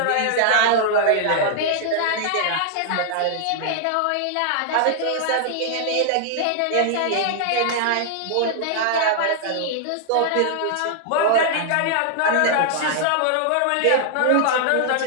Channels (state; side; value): different; both; correlation -0.01